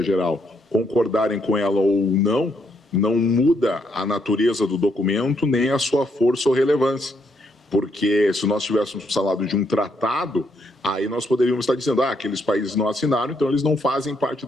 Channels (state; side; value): normal; both; correlation 0.75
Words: Geral, concordarem com ela ou não muda a natureza do documento nem a sua força ou relevância. Porque se nós tivéssemos falado de um tratado, aí nós poderíamos estar dizendo, aqueles países não assinaram, então eles não fazem parte